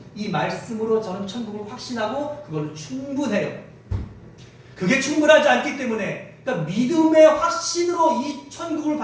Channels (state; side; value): identical; both; correlation 1.00